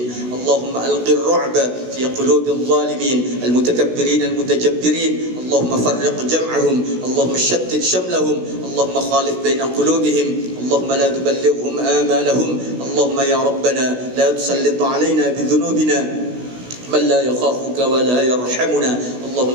اللهم ألق الرعب في قلوب الظالمين المتكبرين المتجبرين. اللهم فرق جمعهم. اللهم شتت شملهم. اللهم خالف بين قلوبهم. اللهم لا تبلغهم آمالهم. اللهم يا ربنا لا تسلط علينا بذنوبنا من لا يخافك ولا يرحمنا.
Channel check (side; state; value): left; late; 16 ms